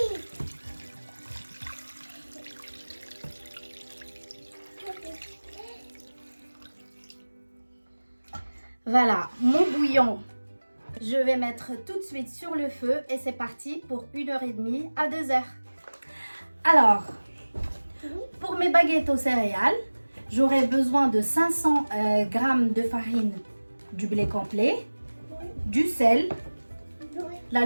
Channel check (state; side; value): inverted; both; correlation -1.00